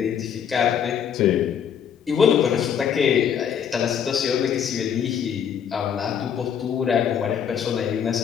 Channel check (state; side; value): quieter; right; 8.1 dB